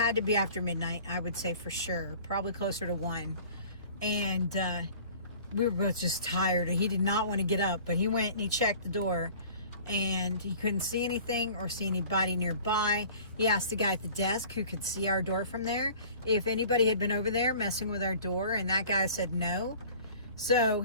to be after midnight, I would say for sure. Probably closer to 1. And we were both just tired. He did not want to get up, but he went and he checked the door and he couldn't see anything or see anybody nearby. He asked the guy at the desk who could see our door from there if anybody had been over there messing with our door, and that guy said no. So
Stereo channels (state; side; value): inverted; both; correlation -0.46